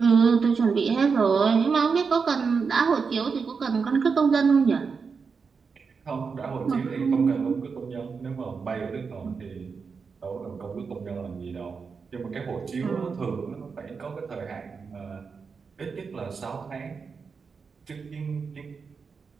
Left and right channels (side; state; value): left; quieter; 5.3 dB